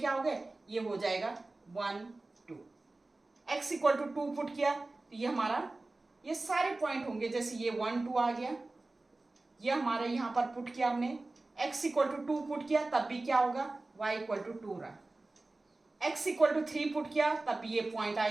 हो गए, ये हो जाएगा 1 2। x इक्वल टू 2 पुट किया, तो ये हमारा, ये सारे पॉइंट होंगे, जैसे ये 1 2 आ गया, ये हमारा यहाँ पर पुट किया हमने, x इक्वल टू 2 पुट किया, तब भी क्या होगा, y इक्वल टू 2 रहा। x इक्वल टू 3 पुट किया, तब भी ये पॉइंट आ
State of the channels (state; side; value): quieter; left; 3.1 dB